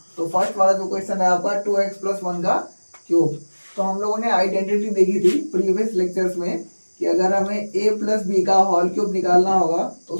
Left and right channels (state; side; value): inverted; both; correlation -1.00